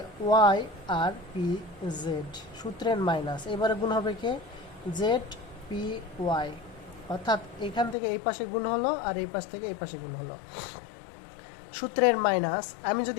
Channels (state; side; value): drops out; right; at 8.0 s